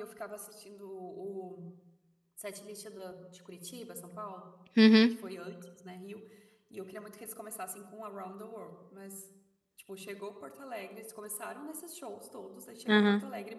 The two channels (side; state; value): both; identical; correlation 1.00